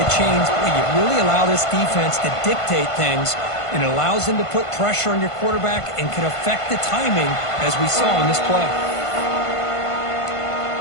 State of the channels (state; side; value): late; right; 1.5 ms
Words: chains, boy, you really allow this defense to dictate things, and it allows them to put pressure on your quarterback and can affect the timing, as we saw in this play.